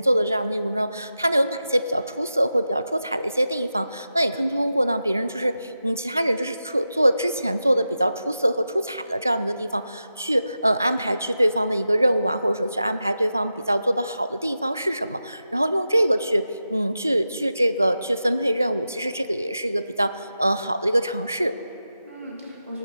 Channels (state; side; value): inverted; both; correlation -0.90